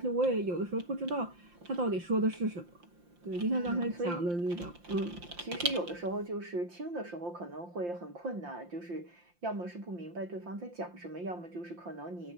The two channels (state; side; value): late; left; 5.8 ms